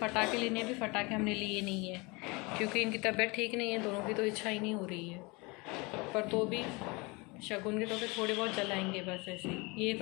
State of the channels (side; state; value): right; quieter; 26.7 dB